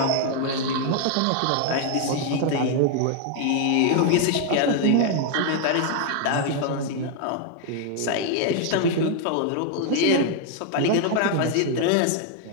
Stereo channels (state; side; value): different; both; correlation 0.00